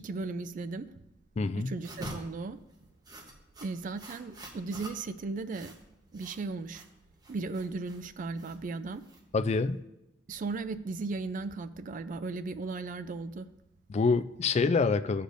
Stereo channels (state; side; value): normal; both; correlation 0.55